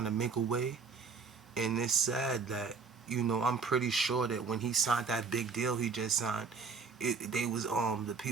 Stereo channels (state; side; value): quieter; left; 5.1 dB